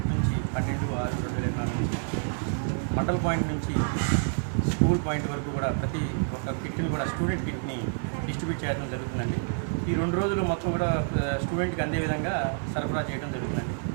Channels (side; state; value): left; silent; 59 dB below the other